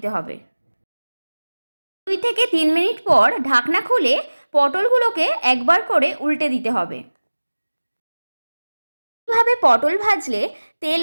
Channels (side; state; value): both; inverted; correlation -1.00